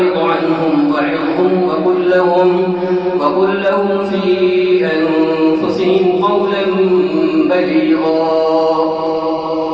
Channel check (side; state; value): right; noise; rumble, 29 dB below the sound